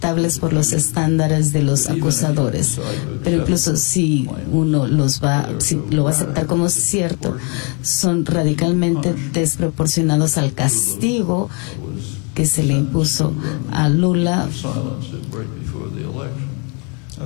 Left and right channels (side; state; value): right; quieter; 34.9 dB